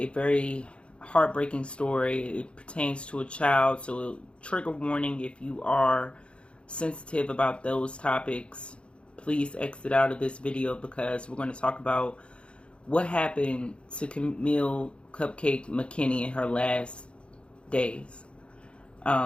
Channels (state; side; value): late; right; 0.058 ms